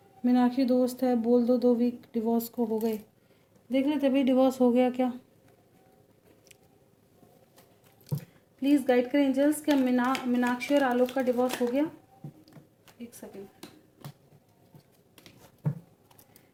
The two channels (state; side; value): identical; both; correlation 1.00